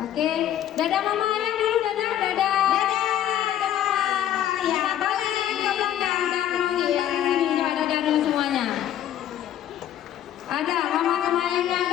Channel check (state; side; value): quieter; right; 11.2 dB